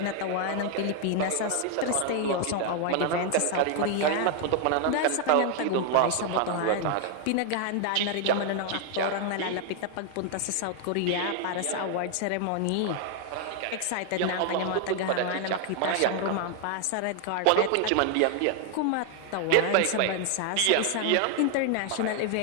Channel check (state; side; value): different; both; correlation 0.00